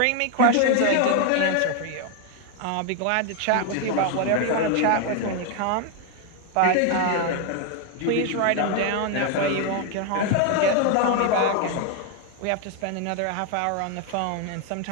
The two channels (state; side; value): different; both; correlation 0.01